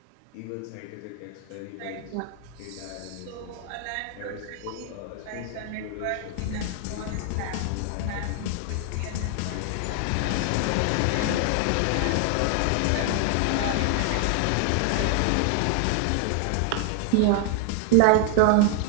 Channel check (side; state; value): both; different; correlation 0.00